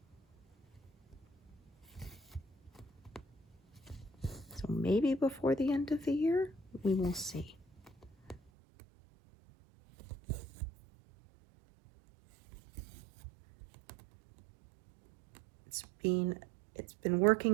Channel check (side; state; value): left; drops out; at 8.4 s